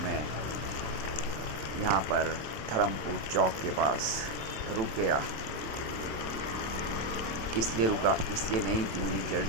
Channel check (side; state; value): left; late; 27 ms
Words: मैं यहाँ पर धर्मपुर चौक के पास रुक गया। इसलिए रुका, इसलिए नहीं कि मुझे